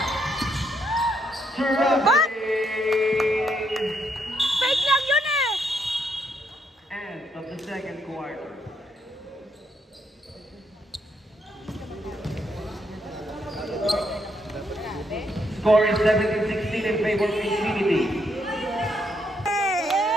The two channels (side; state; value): both; normal; correlation 0.75